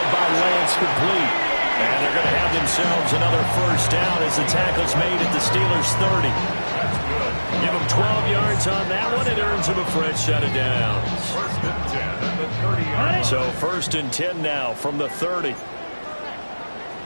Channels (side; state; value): both; inverted; correlation -1.00